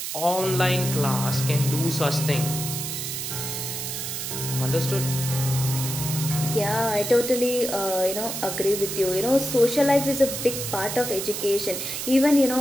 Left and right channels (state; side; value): noise; right; hiss, 5 dB below the sound